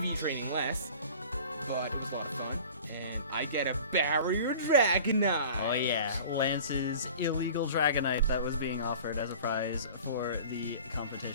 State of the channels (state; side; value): inverted; both; correlation -0.42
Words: training less, but it was a lot of fun. And I get a Barrier Dragonite. Oh yeah, Lance's illegal Dragonite that was being offered as a prize for the